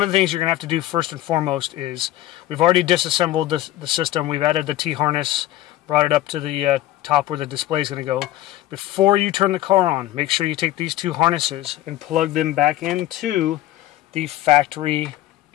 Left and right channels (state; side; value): quieter; right; 14.7 dB